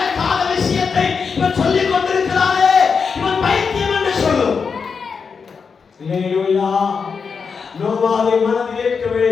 விஷயத்தை இவன் சொல்லிக் கொண்டிருக்கிறானே, இவன் பைத்தியம் என்று சொல்லும். ஹல்லேலூயா. நோவாவை மனதில் ஏற்கவே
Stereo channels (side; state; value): right; quieter; 5.6 dB